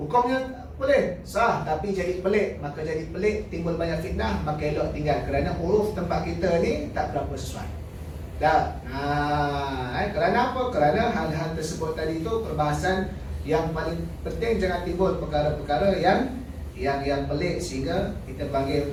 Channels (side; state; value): both; identical; correlation 1.00